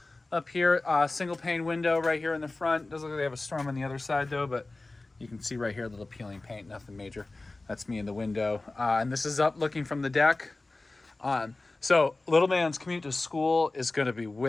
up here. Single pane window right here in the front. Doesn't look like they have a storm on the other side though, but you can see right here, a little peeling paint, nothing major. That's me in the window. And this is up looking from the deck. So little man's commute to school is gonna be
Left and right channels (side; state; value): right; quieter; 3.2 dB